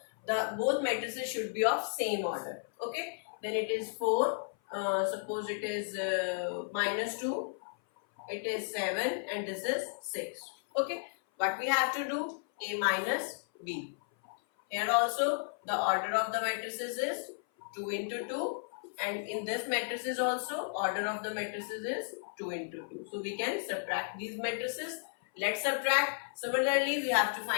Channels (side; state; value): right; silent; 55 dB below the other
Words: the both matrices should be of same order. Okay, then it is 4, suppose it is minus 2, it is 7, and this is 6. Okay, what we have to do, A minus B. Here also the order of the matrices is 2 into 2 and in this matrices also order of the matrices is 2 into 2. So we can subtract these matrices. Let's subtract. Similarly, we have to